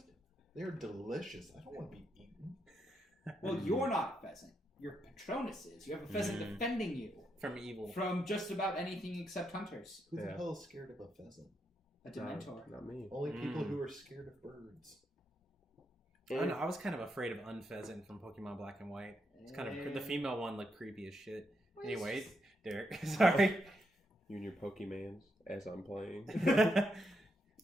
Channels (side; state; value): both; normal; correlation 0.81